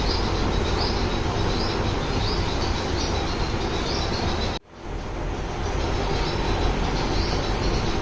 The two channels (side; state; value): both; identical; correlation 1.00